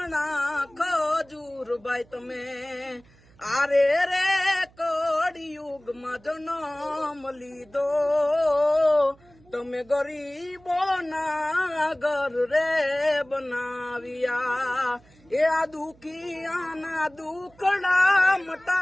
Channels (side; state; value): right; noise; hum, 28 dB below the sound